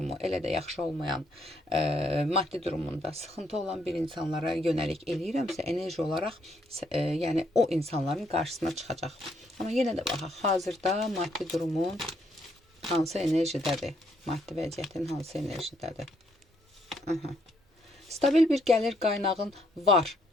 elə də yaxşı olmayan, maddi durumunda sıxıntı olan bir insanlara yönəlik eləyirəmsə, enerji olaraq yəni o insanların qarşısına çıxacaq. Amma yenə də baxaq, hazırda maddi durumun hansı enerjidədir? Maddi vəziyyətin hansı enerjidədir? Stabil bir gəlir qaynağın var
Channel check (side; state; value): both; normal; correlation 0.72